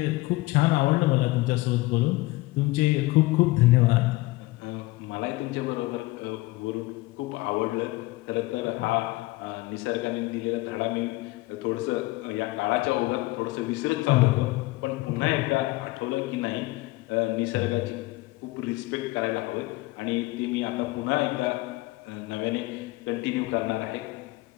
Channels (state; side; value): quieter; right; 20.6 dB